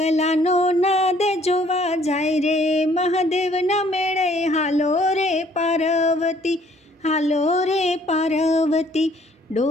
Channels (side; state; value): both; normal; correlation 0.61